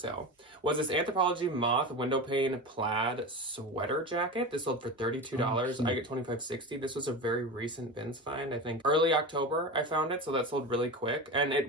sale was this Anthropologie Moth window pane plaid sweater jacket. This sold for $32. I get $25.60. This was a very recent bins find. I think early October I found it, so that sold really quick. And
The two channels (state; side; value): normal; both; correlation 0.26